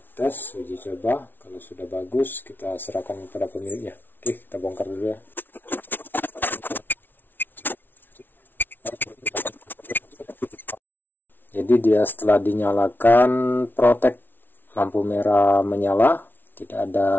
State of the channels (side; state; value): right; late; 0.095 ms